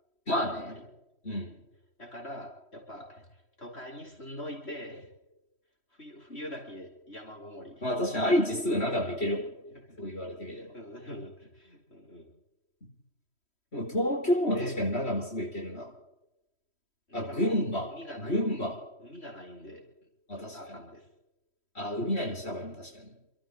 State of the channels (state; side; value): late; right; 3.1 ms